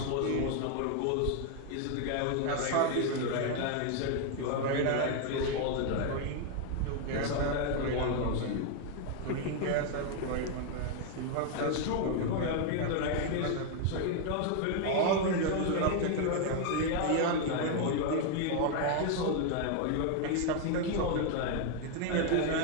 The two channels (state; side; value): different; both; correlation 0.00